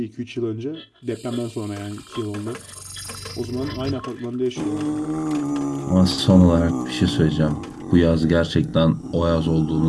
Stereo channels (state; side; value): identical; both; correlation 1.00